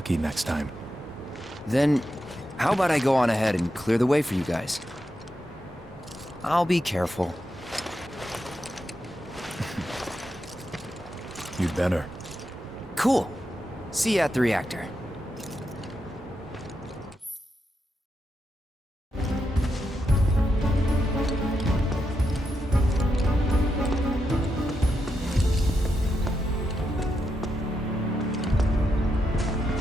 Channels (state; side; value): normal; both; correlation 0.85